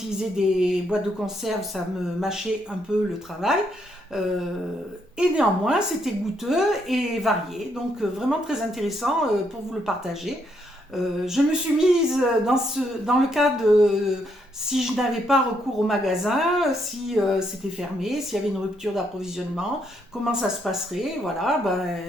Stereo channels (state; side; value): normal; both; correlation 0.75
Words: des boîtes de conserve, ça me mâchait un peu le travail. Et néanmoins, c'était goûteux et varié, donc vraiment très intéressant pour vous le partager. Je me suis mise dans le cas de si je n'avais pas recours au magasin, si c'était fermé, s'il y avait une rupture d'approvisionnement, comment ça se passerait. Voilà,